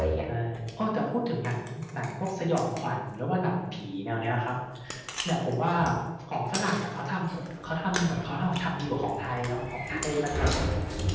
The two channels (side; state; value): both; identical; correlation 1.00